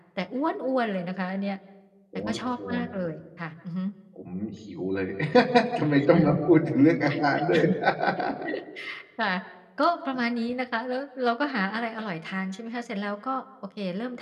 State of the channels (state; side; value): identical; both; correlation 1.00